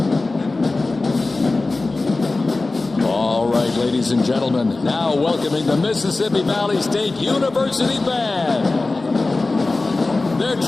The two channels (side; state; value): right; quieter; 3.3 dB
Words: Ladies and gentlemen, now welcoming the Mississippi Valley State University Band. They're